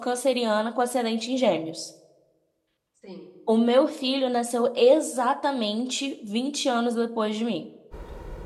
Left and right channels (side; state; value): both; identical; correlation 1.00